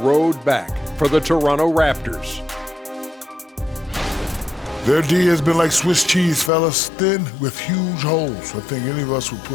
back for the Toronto Raptors. Their D has been like Swiss cheese, fellas. Thin with huge holes. I think any of us would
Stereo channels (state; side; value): drops out; right; at 6.5 s